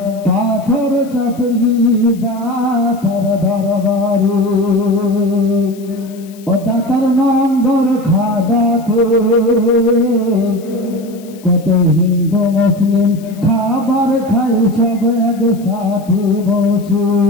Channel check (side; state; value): left; noise; hiss, 24 dB below the sound